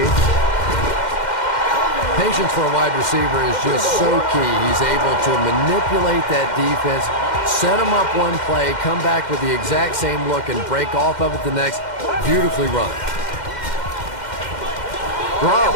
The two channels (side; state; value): right; late; 2.1 ms